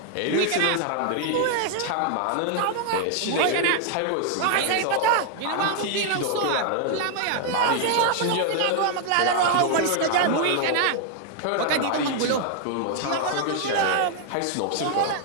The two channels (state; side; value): different; both; correlation 0.00